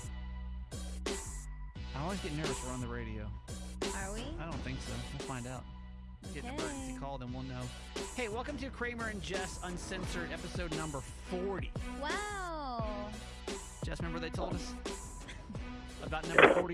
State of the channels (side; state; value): both; identical; correlation 1.00